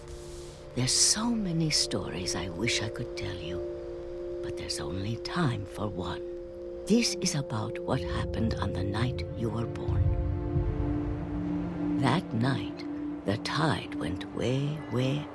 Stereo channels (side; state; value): both; identical; correlation 1.00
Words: there's so many stories I wish I could tell you, but there's only time for one. This is about what happened on the night you were born. That night, the tide went way, way